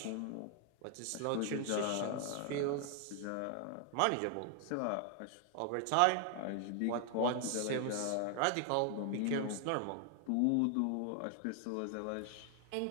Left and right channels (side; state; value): both; different; correlation 0.00